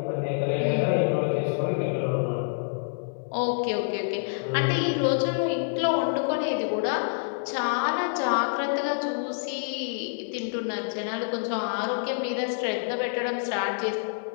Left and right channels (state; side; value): silent; right; digital silence